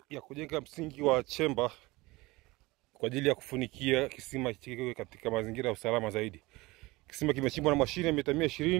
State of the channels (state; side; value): quieter; left; 21.6 dB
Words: ya kujenga msingi wa chemba kwa ajili ya kufunikia kisima kiwe katika mazingira ya usalama zaidi. Kisima kimechimbwa na mashine ya mita